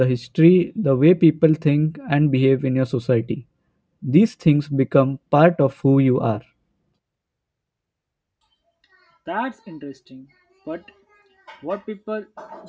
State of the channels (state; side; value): identical; both; correlation 1.00